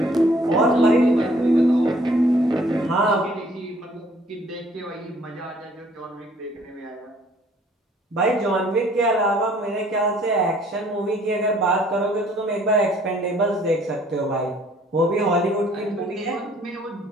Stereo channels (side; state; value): both; normal; correlation 0.59